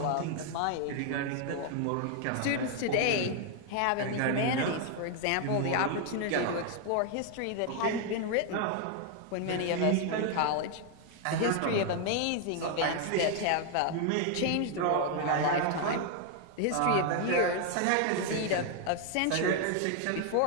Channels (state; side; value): different; both; correlation 0.00